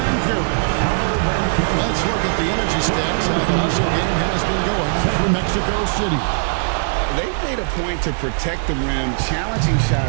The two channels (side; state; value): left; silent; digital silence